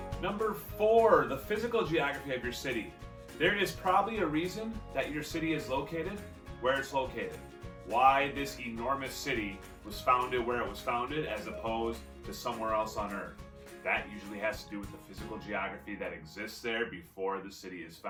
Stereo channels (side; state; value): both; identical; correlation 1.00